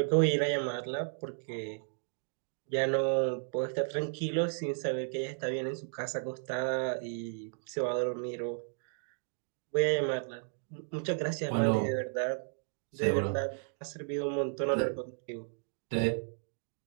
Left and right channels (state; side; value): silent; left; digital silence